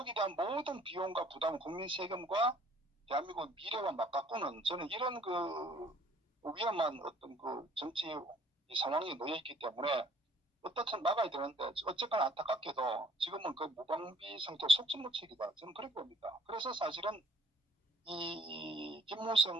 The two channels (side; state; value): both; normal; correlation 0.57